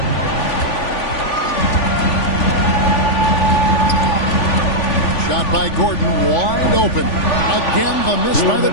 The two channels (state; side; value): late; right; 3.4 ms